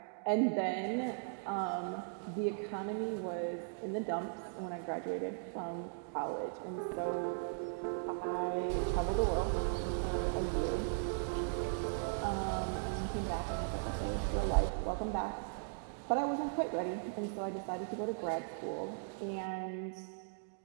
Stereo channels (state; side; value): silent; left; digital silence